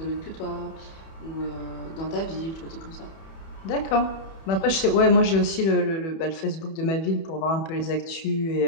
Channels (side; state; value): right; late; 31 ms